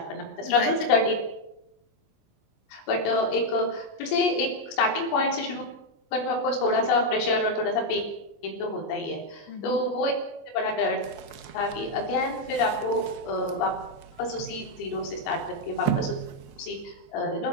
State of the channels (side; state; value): right; late; 20 ms